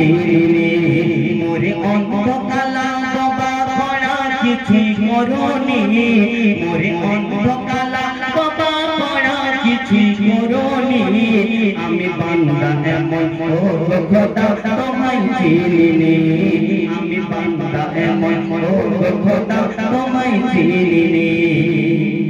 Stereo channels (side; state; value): both; identical; correlation 1.00